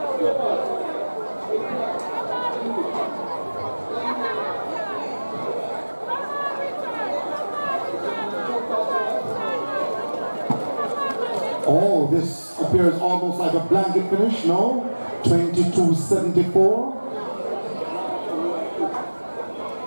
Oh, this appears almost like a blanket finish, no?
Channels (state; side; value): inverted; both; correlation -1.00